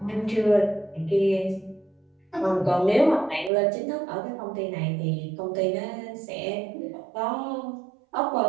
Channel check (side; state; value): left; drops out; at 3.5 s